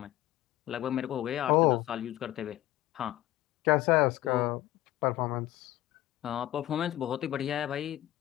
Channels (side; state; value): right; quieter; 15.0 dB